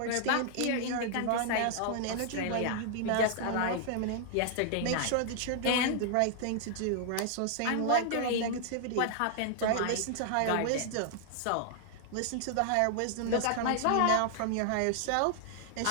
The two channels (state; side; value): different; both; correlation 0.00